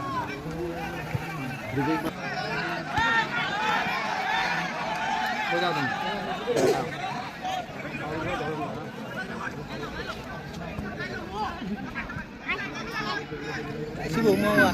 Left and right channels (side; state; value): both; identical; correlation 1.00